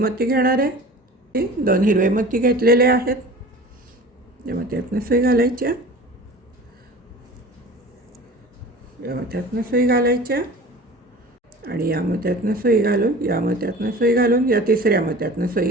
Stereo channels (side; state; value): both; normal; correlation 0.40